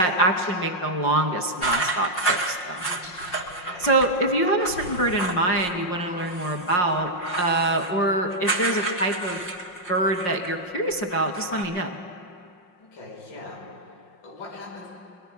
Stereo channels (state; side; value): late; right; 5.6 ms